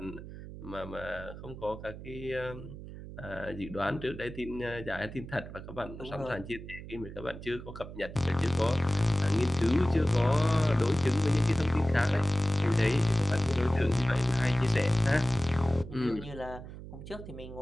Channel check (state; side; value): noise; right; hum, 12 dB below the sound